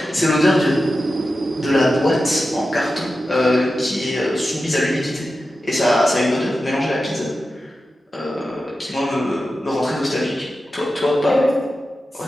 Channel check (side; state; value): both; normal; correlation 0.92